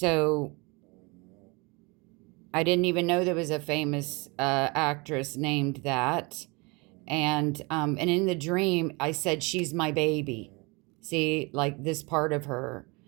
I didn't even know there was a famous actress named that. And in the dream, I said, she's my baby. See, like this part of her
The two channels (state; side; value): quieter; left; 27.9 dB